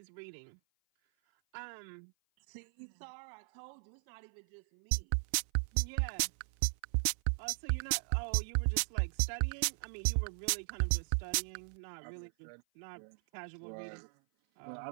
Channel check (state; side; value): silent; left; 53 dB below the other